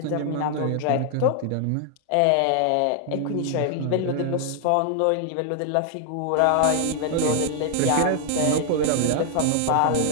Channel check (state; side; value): different; both; correlation 0.00